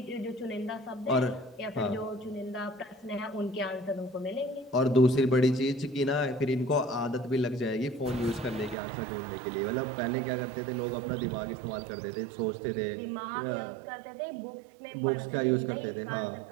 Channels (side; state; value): left; drops out; at 8.8 s